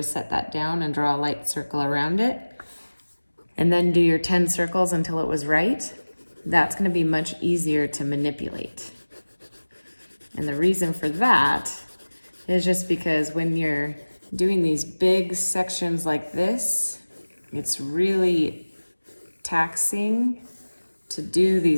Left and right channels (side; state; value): both; inverted; correlation -1.00